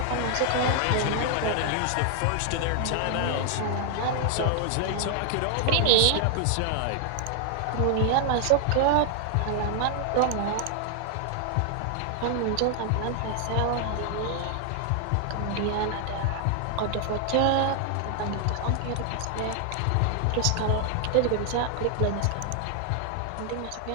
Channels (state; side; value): different; both; correlation 0.00